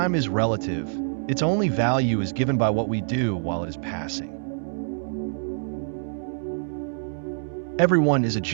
is relative. Its only value is given by what we do while it is passing. Everyone is a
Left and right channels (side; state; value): left; silent; 61 dB below the other